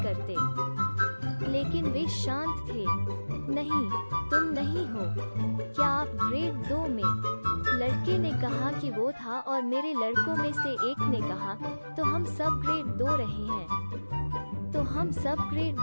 लेकिन वे शांत थे। नहीं, तुम नहीं हो। क्या आप ग्रेड 2 में? लड़के ने कहा कि वो था और मेरे लड़कों में से एक ने कहा, तो हम सब ग्रेड 2 रहे हैं। तो हम सब ग्रेड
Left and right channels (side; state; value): both; inverted; correlation -1.00